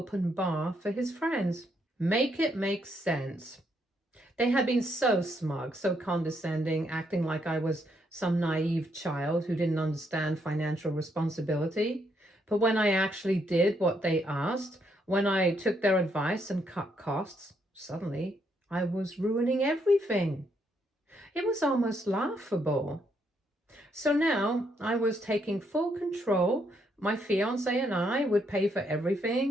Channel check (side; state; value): both; normal; correlation 0.75